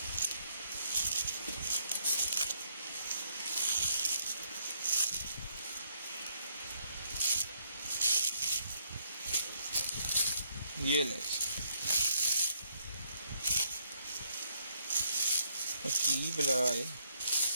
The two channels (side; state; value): both; inverted; correlation -0.71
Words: ये ले बुलाए